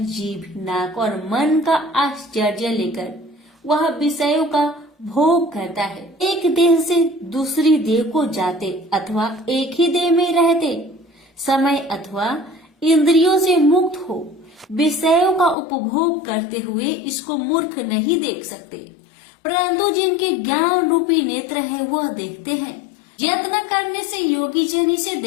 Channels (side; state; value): right; drops out; at 15.6 s